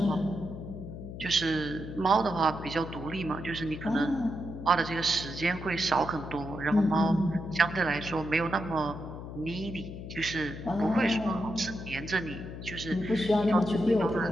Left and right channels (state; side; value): noise; left; hum, 10 dB below the sound